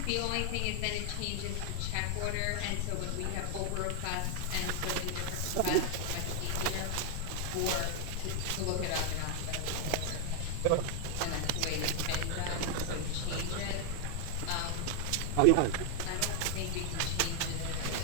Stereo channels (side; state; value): both; different; correlation 0.00